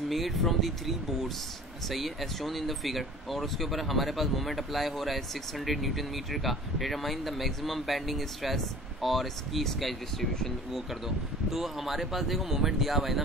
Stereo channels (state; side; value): normal; both; correlation 0.44